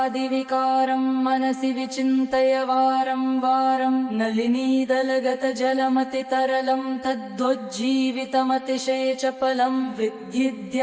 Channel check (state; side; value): identical; both; correlation 1.00